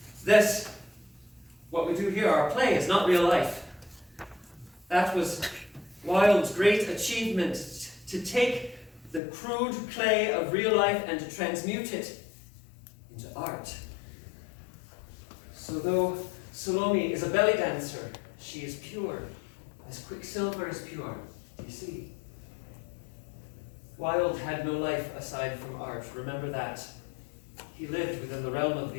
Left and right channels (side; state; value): right; drops out; at 9.2 s